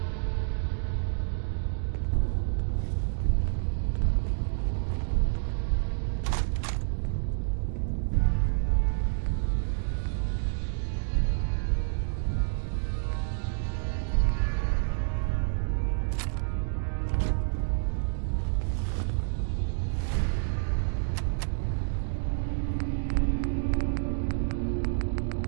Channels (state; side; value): silent; left; digital silence